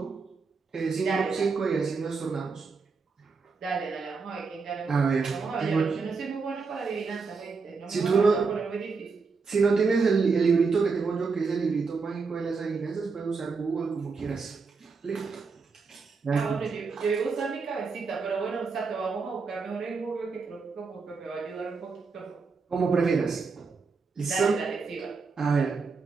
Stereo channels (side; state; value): left; quieter; 4.7 dB